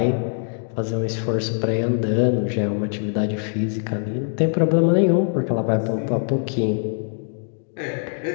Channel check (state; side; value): silent; right; digital silence